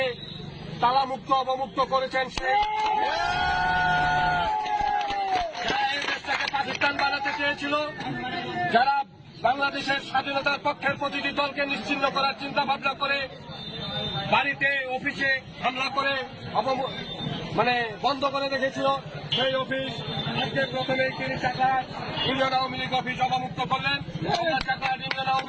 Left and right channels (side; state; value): both; identical; correlation 1.00